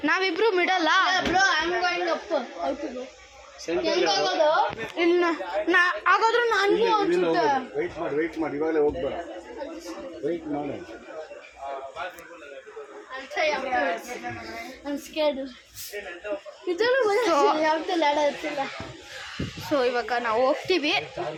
ನಾವಿಬ್ರು ಮಿಡಲ್ಲ. ಇಲ್ಲ ಹಾಗಾದ್ರೆ ನನಗೂ ಅನ್ಸುತ್ತೆ. ವೆಯ್ಟ್ ಮಾಡಿ ಇವಾಗಲೇ ಹೋಗ್ಬೇಡ, ವೆಯ್ಟ್ ಮಾಡಿ. ಸೊ ಇವಾಗ ನಾವು ಹೋಗ್ತೀವಿ.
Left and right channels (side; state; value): both; identical; correlation 1.00